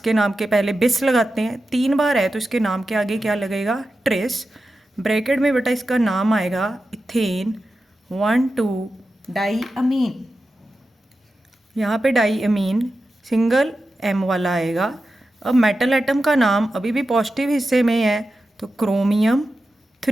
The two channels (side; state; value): both; normal; correlation 0.91